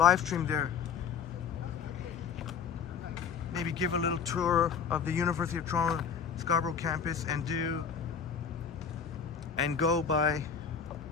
stream there. maybe give a little tour of the University of Toronto Scarborough campus and go by.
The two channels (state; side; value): quieter; right; 6.8 dB